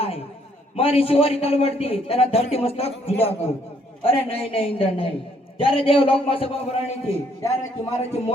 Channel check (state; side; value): normal; both; correlation 0.67